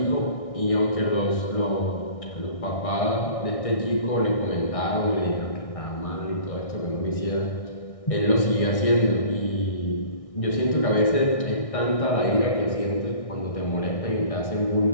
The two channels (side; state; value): right; late; 1.6 ms